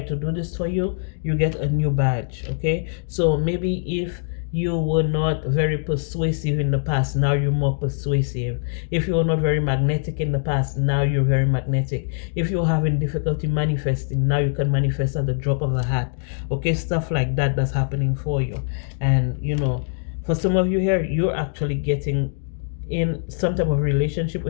do this for you, you get a new badge. Okay, so maybe if you were not very persuasive in the past, now you're more persuasive. If you were not very magnetic in the past, now you're very magnetic. If you're having difficulty manifesting, now you can manifest at the drop of a hat. Okay, stuff like that that's happening for you. And for some of you here, you're actually getting in some type of relationship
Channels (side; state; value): right; silent; digital silence